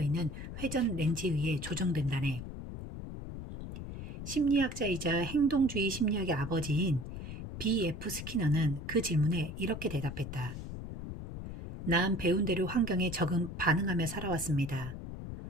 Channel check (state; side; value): noise; left; rumble, 8 dB below the sound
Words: 있는 회전 렌즈에 의해 조정된다네. 심리학자이자 행동주의 심리학의 아버지인 B.F. 스키너는 그 질문에 이렇게 대답했다. 난 배운 대로 환경에 반응하며 살아왔습니다.